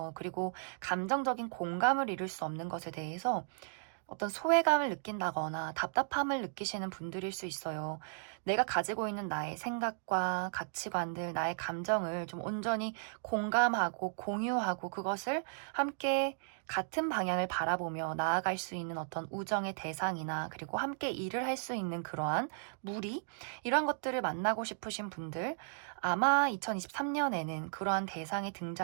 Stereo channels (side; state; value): left; silent; digital silence